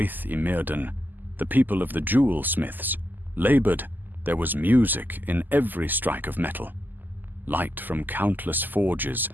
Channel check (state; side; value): late; left; 0.087 ms